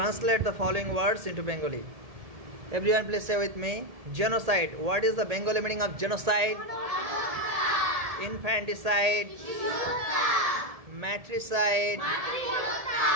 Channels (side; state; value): left; late; 1.7 ms